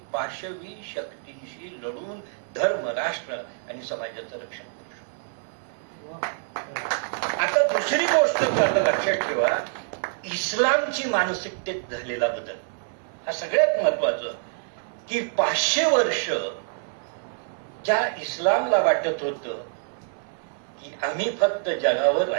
पाशवी शक्तींशी लढून धर्म, राष्ट्र आणि समाजाचं रक्षण करू शकतो. आता दुसरी गोष्ट लक्षात ठेवा, इस्लामची मानसिकतेत झालेला बदल हा सगळ्यात महत्वाचं. की 500 वर्ष ज्या इस्लामला वाटत होतं की आम्ही फक्त जगावर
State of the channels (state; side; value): silent; left; digital silence